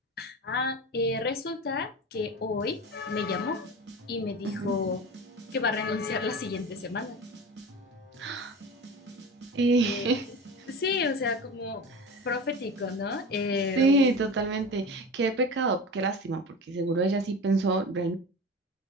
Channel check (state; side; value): normal; both; correlation 0.31